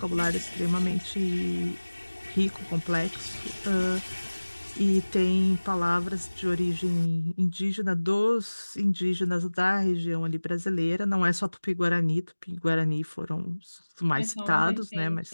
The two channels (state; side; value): inverted; both; correlation -1.00